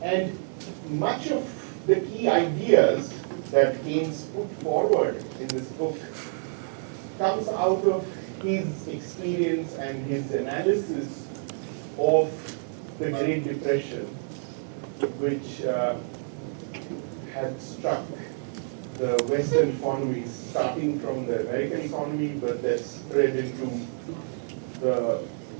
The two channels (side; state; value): left; silent; 59 dB below the other